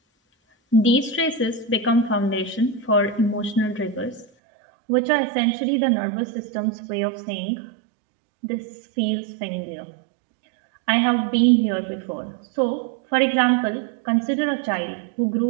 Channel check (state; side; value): drops out; left; at 4.2 s